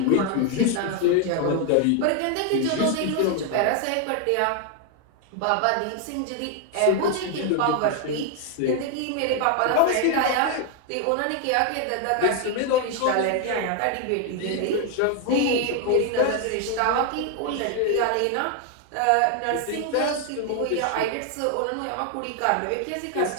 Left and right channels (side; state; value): both; different; correlation 0.00